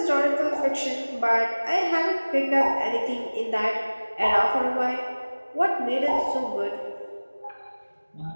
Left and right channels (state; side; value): inverted; both; correlation -1.00